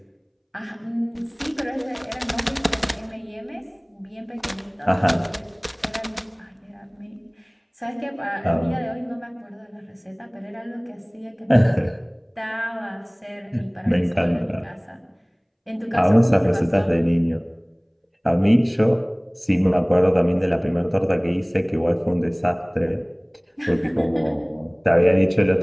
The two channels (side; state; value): both; identical; correlation 1.00